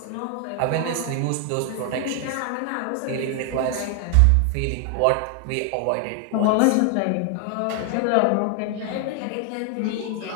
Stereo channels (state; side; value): different; both; correlation 0.00